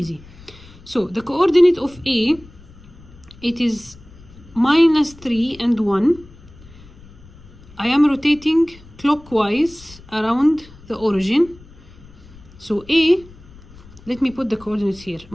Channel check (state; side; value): noise; left; rumble, 22 dB below the sound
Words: So the coordinate of A, it is minus 3 and 1. I am rotating clockwise around the origin. So A, let me put the coordinates here,